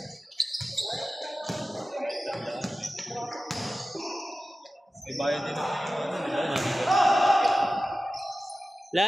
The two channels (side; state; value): both; normal; correlation 0.95